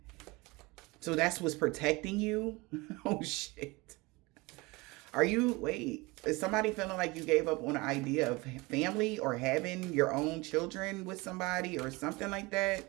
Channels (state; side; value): quieter; left; 23.9 dB